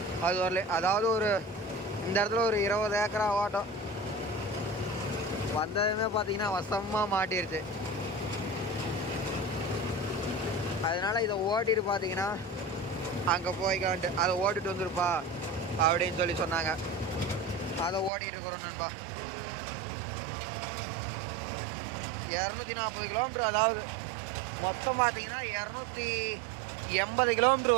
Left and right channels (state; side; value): drops out; left; at 18.1 s